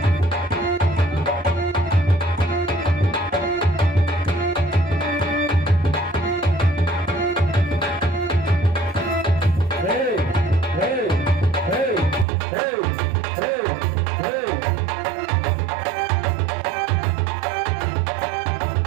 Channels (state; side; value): drops out; left; at 12.2 s